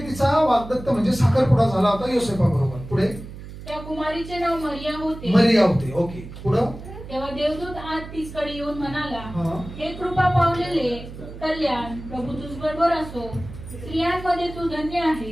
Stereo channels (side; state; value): right; noise; hum, 13 dB below the sound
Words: तिचा वाग्दत्त म्हणजे साखरपुडा झाला होता योसेफा बरोबर. पुढे त्या कुमारीचे नाव मरिया होते. मरिया होते. ओके. पुढं. तेव्हा देवदूत आज तिसकडे येऊन म्हणाला, हे कृपा पावलेले कल्याण, प्रभू तुझ बरोबर असो, स्त्रियांमध्ये तू धन्य